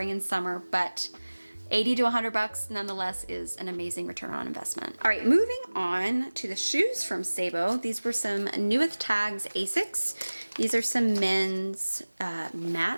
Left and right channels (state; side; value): inverted; both; correlation -1.00